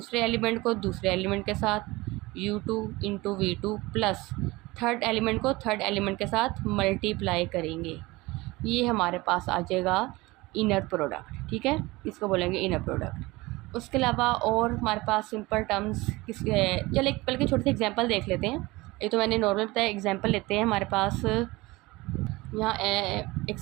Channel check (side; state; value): left; quieter; 21.6 dB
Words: एलिमेंट को दूसरे एलिमेंट के साथ u2 into v2 plus third element को थर्ड एलिमेंट के साथ मल्टीप्लाई करेंगे, ये हमारे पास आ जाएगा इनर प्रोडक्ट, ठीक है। इसको बोलेंगे इनर प्रोडक्ट। उसके अलावा और हमारे पास सिंपल टर्म्स चलिए बल्कि छोटे से एग्जांपल देख लेते हैं। ये तो मैंने नॉर्मल बताया, एग्जांपल लेते हैं। हमारे पास यहाँ